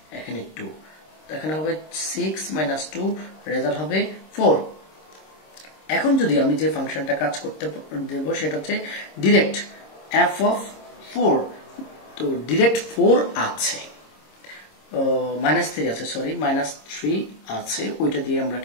এখানে 2, এখানে হবে 6 - 2, রেজাল্ট হবে 4। এখন যদি আমি যে ফাংশনটা কাজ করতে দেব সেটা হচ্ছে ডিরেক্ট f(4). তো ডিরেক্ট 4 আছে, -3 আছে, সরি -3 আছে, ওইটা দিয়ে আমরা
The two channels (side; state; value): right; late; 26 ms